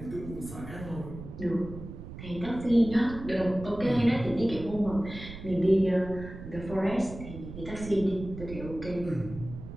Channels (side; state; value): right; noise; rumble, 12 dB below the sound